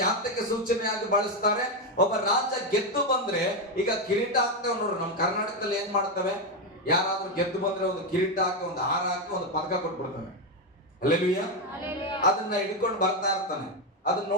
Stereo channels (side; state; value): both; normal; correlation 0.08